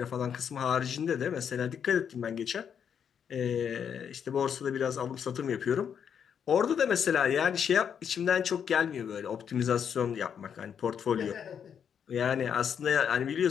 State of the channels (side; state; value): right; quieter; 7.8 dB